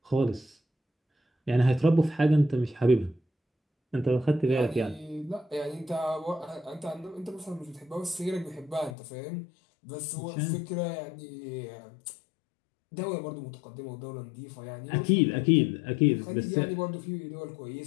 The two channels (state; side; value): drops out; right; at 9.0 s